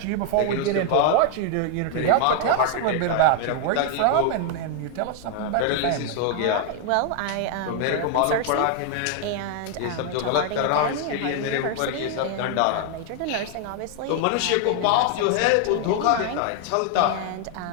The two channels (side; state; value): both; different; correlation 0.00